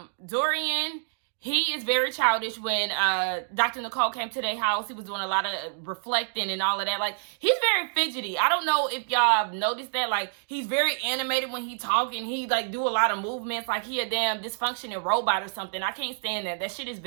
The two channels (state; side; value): silent; left; digital silence